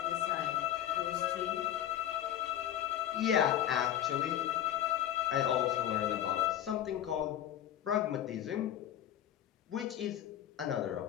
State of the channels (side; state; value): right; quieter; 11.4 dB